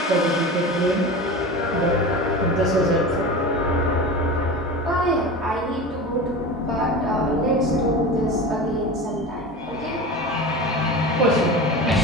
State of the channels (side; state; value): both; normal; correlation 0.30